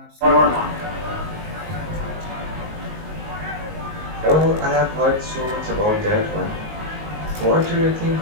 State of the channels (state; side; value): late; left; 19 ms